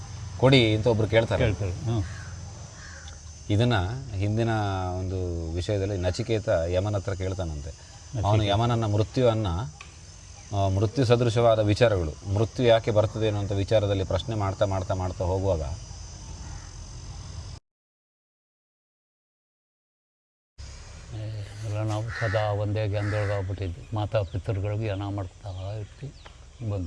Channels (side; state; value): both; identical; correlation 1.00